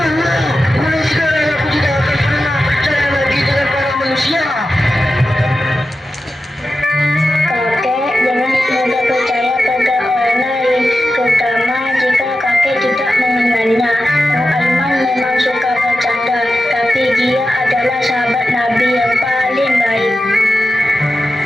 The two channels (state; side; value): normal; both; correlation 0.92